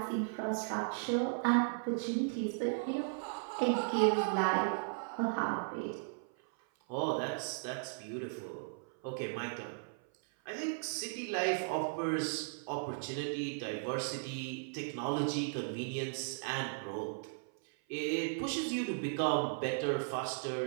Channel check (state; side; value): silent; left; 54 dB below the other